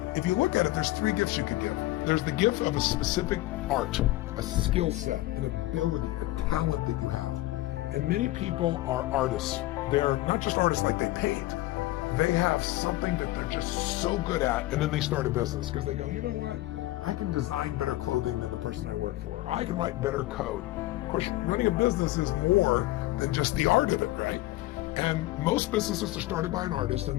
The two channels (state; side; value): quieter; right; 17.7 dB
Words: If you look at it, there's 3 gifts you could give. There's the gift of a specific art, a skill set, an ability, a talent that you have. And many people are artists. They're not just artists like they paint. They have something that they're just so good at, and then they start a business because they go, you know what? I can design better clothing than the person I work for. I can write better code. Of course, running a business is more than just the art of it, right? And most businesses are started by an artist, and